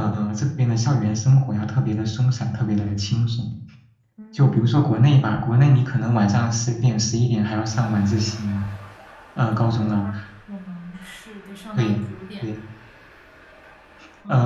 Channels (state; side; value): identical; both; correlation 1.00